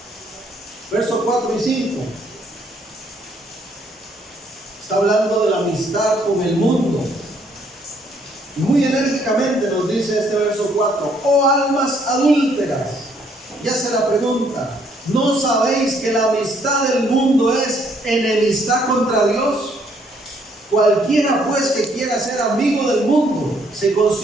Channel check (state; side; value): normal; both; correlation 0.67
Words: Versos 4 y 5. Está hablando de la amistad con el mundo. Y muy enérgicamente nos dice este verso 4. Oh almas adúlteras. Ya se la pregunta. ¿No sabéis que la amistad del mundo es enemistad contra Dios? Cualquiera pues que quiera ser amigo del mundo se